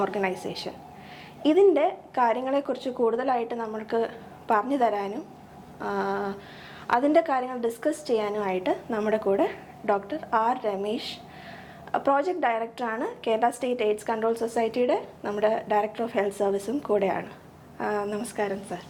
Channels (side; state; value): both; identical; correlation 1.00